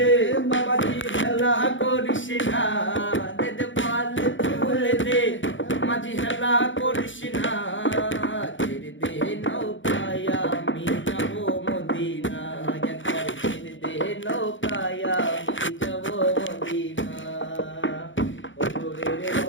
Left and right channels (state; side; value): late; right; 0.56 ms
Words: মাঝি হেলা করিস না, দে পালে তুলে দে মাঝি হেলা করিস না, ছেড়ে দে নৌকায় আমি যাব মদিনা, একবার ছেড়ে দে নৌকায় আমি যাব মদিনা। নূরের